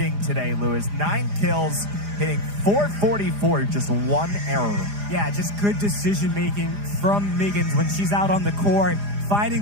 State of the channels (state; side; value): late; left; 4.9 ms